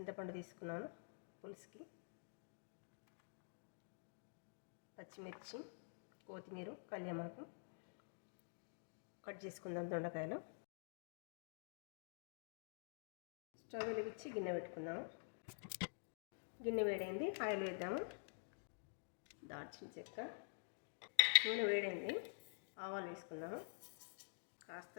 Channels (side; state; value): right; silent; digital silence